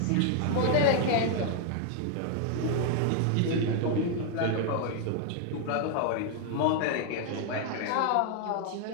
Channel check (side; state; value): both; different; correlation 0.00